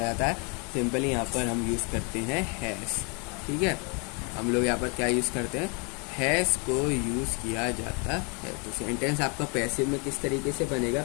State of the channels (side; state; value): right; quieter; 34.4 dB